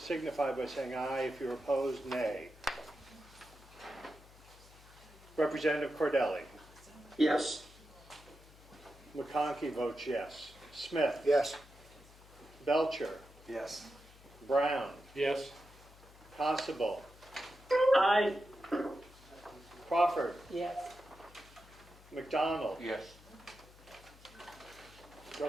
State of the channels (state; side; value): noise; left; hum, 22 dB below the sound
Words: by saying aye. If you're opposed, nay. Representative Cordelli. Yes. McConkey votes yes. Smith. Yes. Belcher. Yes. Brown. Yes. Constable. Aye. Crawford. Yes. McDonald. Yes.